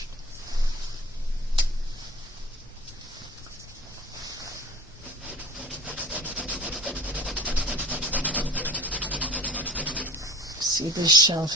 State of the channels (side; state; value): both; normal; correlation 0.42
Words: See this shelf